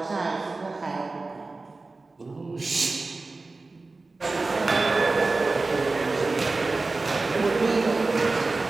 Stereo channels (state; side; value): quieter; left; 3.5 dB